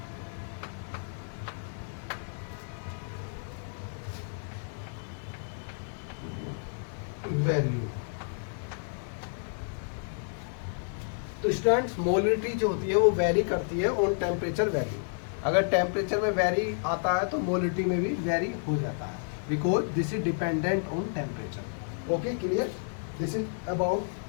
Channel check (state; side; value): silent; right; digital silence